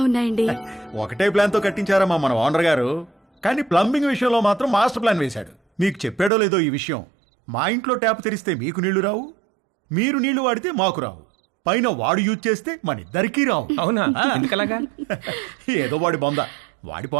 ఉన్నాయండి. ఒకటే ప్లాన్ తో కట్టించారమ్మా మన ఓనర్ గారు, కానీ ప్లంబింగ్ విషయంలో మాత్రం మాస్టర్ ప్లాన్ వేశాడు. మీకు చెప్పాడో లేదో ఈ విషయం, మా ఇంట్లో ట్యాప్ తెరిస్తే మీకు నీళ్లు రావు, మీరు నీళ్లు వాడితే మాకు రావు, పైన వాడు యూజ్ చేస్తే మన ఇద్దరికీ రావు. అవునా? ఎందుకలాగా? ఏదో వాడి బొంద, వాడి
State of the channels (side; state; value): left; drops out; at 6.3 s